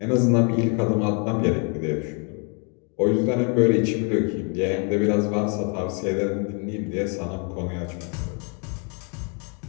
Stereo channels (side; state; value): right; quieter; 37.1 dB